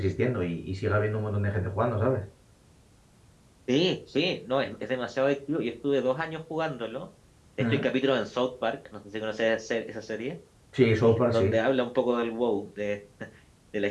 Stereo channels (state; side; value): identical; both; correlation 1.00